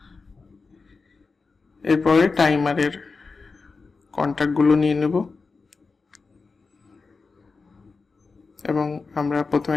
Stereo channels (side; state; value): right; quieter; 4.3 dB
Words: এরপরে টাইমারের কন্ট্যাক্টগুলো নিয়ে নেব এবং আমরা প্রথমে